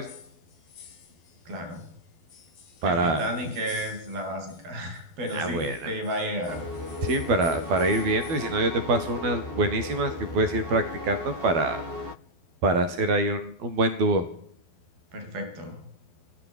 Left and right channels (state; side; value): late; left; 12 ms